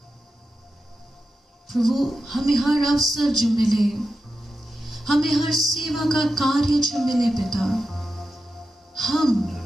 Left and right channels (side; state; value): both; normal; correlation 0.89